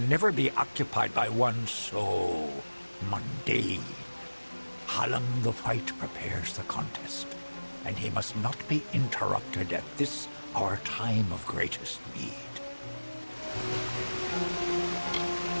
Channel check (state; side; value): inverted; both; correlation -1.00